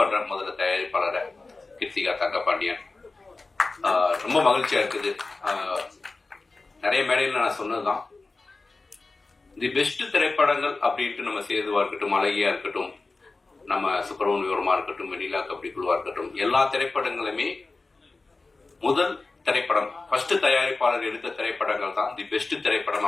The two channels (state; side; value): quieter; right; 3.6 dB